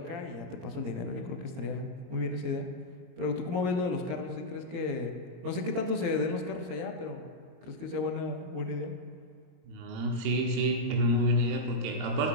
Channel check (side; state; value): left; late; 22 ms